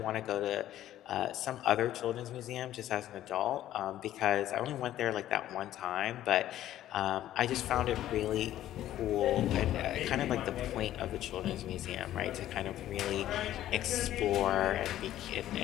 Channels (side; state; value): right; quieter; 12.9 dB